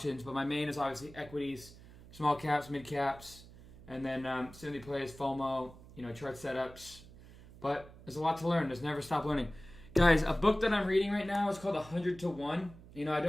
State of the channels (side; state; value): right; noise; hum, 19 dB below the sound